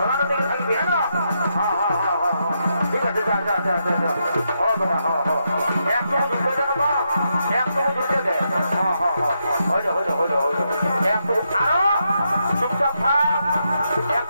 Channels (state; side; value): inverted; both; correlation -0.82